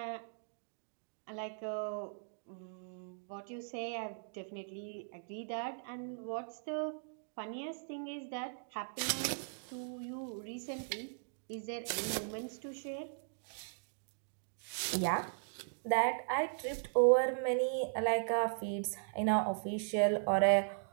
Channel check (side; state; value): left; silent; digital silence